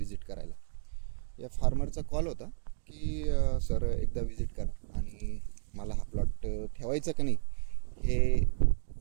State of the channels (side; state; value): left; silent; digital silence